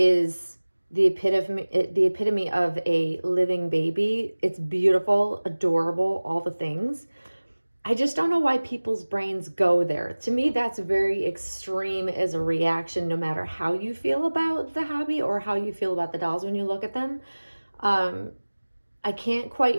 the epitome of a living baby. It's beautiful, adorable, all the things. I just don't know why people's brains go there. To me, that's very extreme as a reaction, no matter how you feel about the hobby or how you feel about the dolls when you look at them. I can't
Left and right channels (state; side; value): inverted; both; correlation -1.00